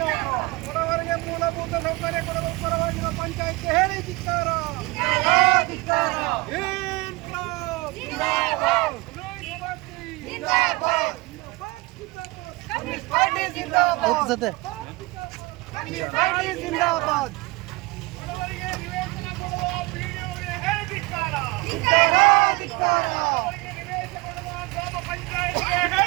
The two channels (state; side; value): quieter; left; 24.0 dB